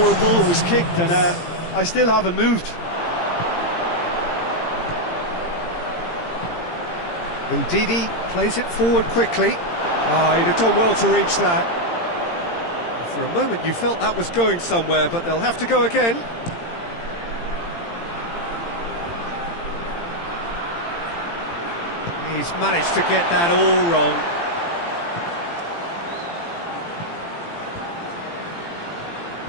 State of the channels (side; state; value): right; late; 17 ms